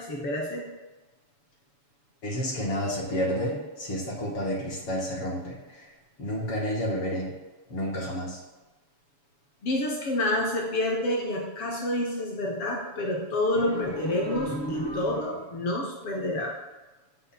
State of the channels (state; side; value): late; right; 7.0 ms